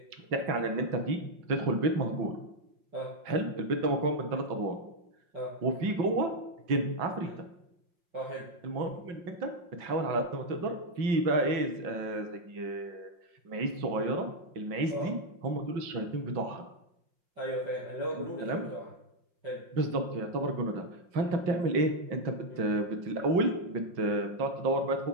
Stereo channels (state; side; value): late; left; 5.6 ms